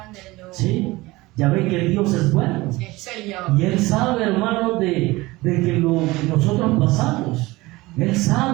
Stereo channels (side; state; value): left; quieter; 20.7 dB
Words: ¿Sí? Ya ven que Dios es bueno. Sí, Señor. Y Él sabe, hermanos, de que lo que nosotros pasamos. Él